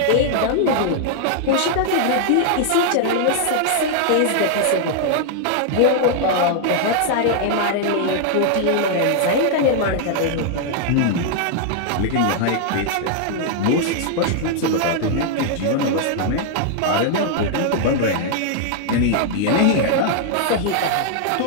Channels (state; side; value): different; both; correlation 0.00